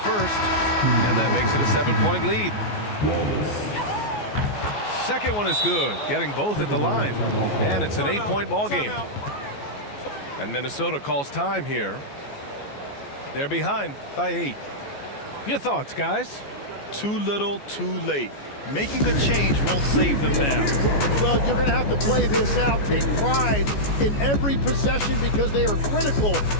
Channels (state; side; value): late; right; 14 ms